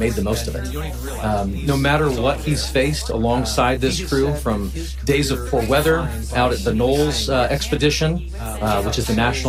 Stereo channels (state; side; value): identical; both; correlation 1.00